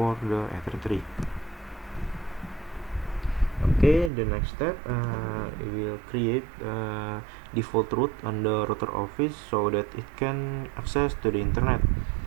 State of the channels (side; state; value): left; drops out; at 4.1 s